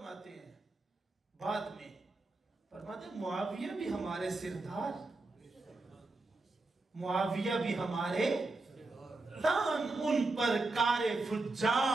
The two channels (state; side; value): quieter; left; 3.2 dB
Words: ہیں بعد میں؟ فرماتے ہیں معاویہ بھی ہمارے سردار، معاویہ بھی ہمارے دان، ان پر کار